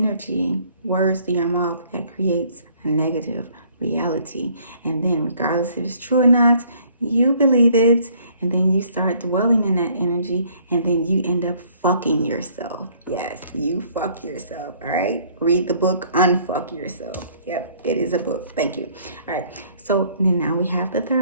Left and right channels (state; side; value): inverted; both; correlation -0.60